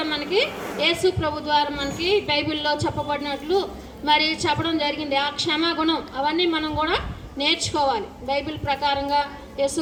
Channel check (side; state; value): both; identical; correlation 1.00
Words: మనకి యేసు ప్రభు ద్వారా మనకి బైబిల్లో చెప్పబడినట్లు మరి చెప్పడం జరిగింది. ఆ క్షమాగుణం అవన్నీ మనం కూడా నేర్చుకోవాలి. బైబిల్ ప్రకారంగా యేసు